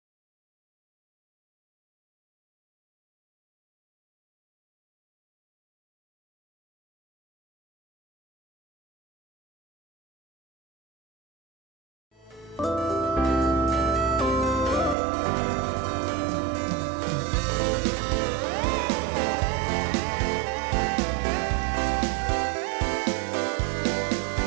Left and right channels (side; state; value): left; drops out; at 15.0 s